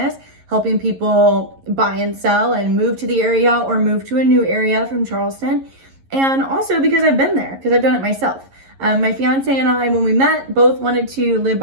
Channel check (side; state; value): left; late; 11 ms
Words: helping people buy and sell and move to the area or move to a new area from Charleston. And also because I've been there, because I've done it myself. My fiance and I, when we met, both wanted to live